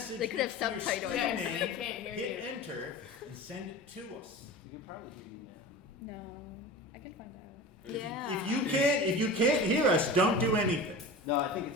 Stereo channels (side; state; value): both; normal; correlation 0.33